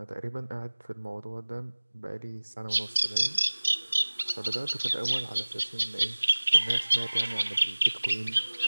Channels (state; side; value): inverted; both; correlation -1.00